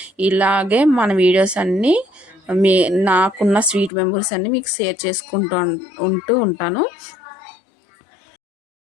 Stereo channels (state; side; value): drops out; right; at 3.9 s